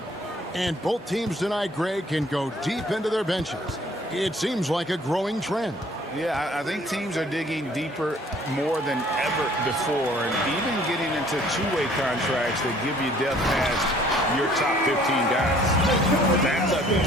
And both teams tonight, Greg, can go deep into their benches. It seems like a growing trend. Yeah, I think teams are digging deeper more than ever before, and even getting into two-way contracts that give you depth past your top 15 guys. That's a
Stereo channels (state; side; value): normal; both; correlation 0.57